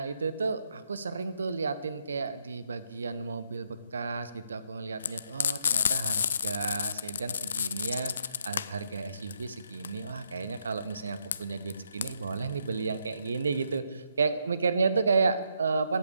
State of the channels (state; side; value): inverted; both; correlation -0.76